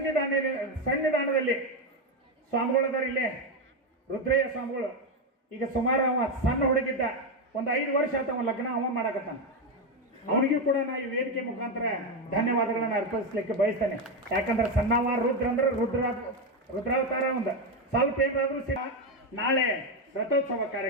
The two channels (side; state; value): both; normal; correlation 0.09